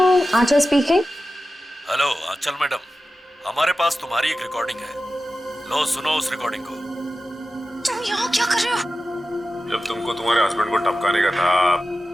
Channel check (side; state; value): both; normal; correlation 0.93